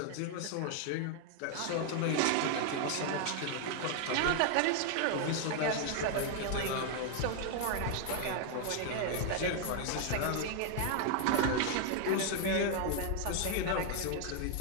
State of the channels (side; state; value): both; different; correlation 0.00